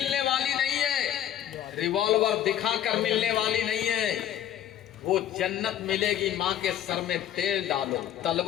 वाली नहीं है, रिवॉल्वर दिखाकर मिलने वाली नहीं है। वो जन्नत मिलेगी माँ के सर में तेल डालो,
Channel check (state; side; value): quieter; right; 11.0 dB